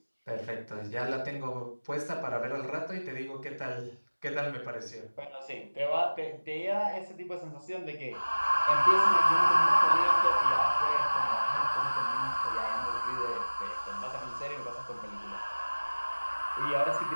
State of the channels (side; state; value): both; inverted; correlation -1.00